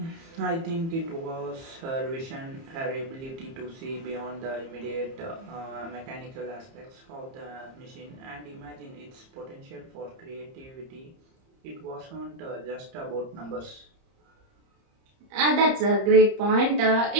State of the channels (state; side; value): late; left; 30 ms